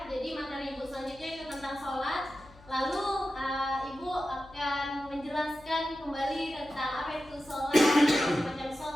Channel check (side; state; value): left; noise; hum, 23 dB below the sound